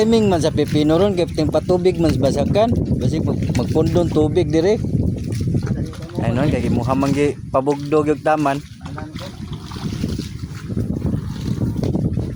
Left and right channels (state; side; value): identical; both; correlation 1.00